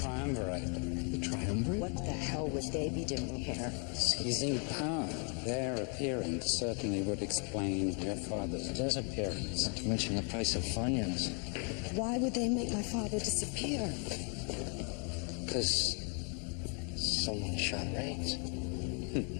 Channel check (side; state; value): right; quieter; 38.0 dB